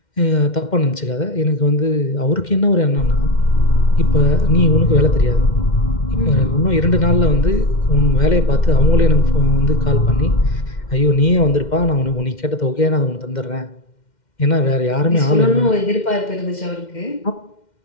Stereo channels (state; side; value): late; right; 2.1 ms